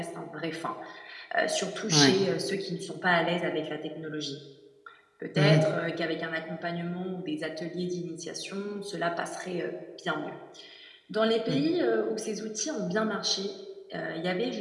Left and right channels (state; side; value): identical; both; correlation 1.00